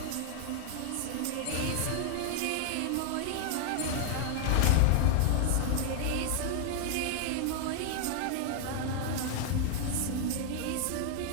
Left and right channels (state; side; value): different; both; correlation 0.00